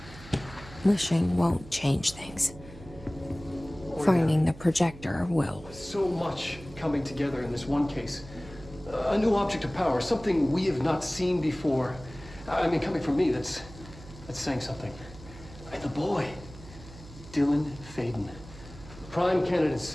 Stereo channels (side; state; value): right; noise; hum, 17 dB below the sound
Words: wishing won't change things. Finding the projector will. So much coming together in this one case. A new object of power, something we have not seen before. I mean, coming from me, that's saying something. And the boy, Dylan Faden, prime candidate